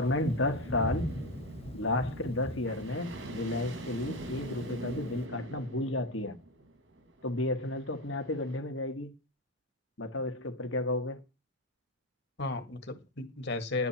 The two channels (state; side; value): normal; both; correlation 0.14